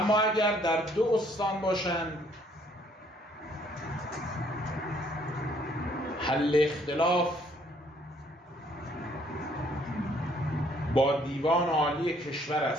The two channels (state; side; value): normal; both; correlation 0.64